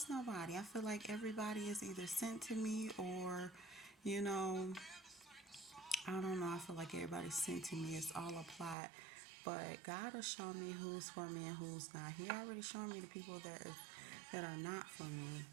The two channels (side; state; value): left; drops out; at 8.8 s